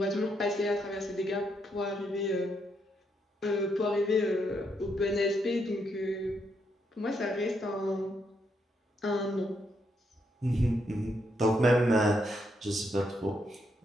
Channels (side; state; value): both; normal; correlation 0.78